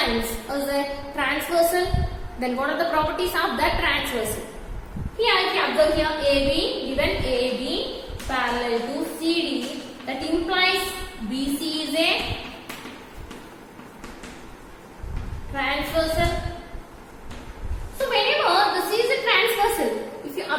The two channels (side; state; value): both; identical; correlation 1.00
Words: is a transversal. Then what are the properties of that transversal? Here if you observe here AB, given AB parallel to CD, that implies BC is a transversal. So whenever the C is a transversal, if you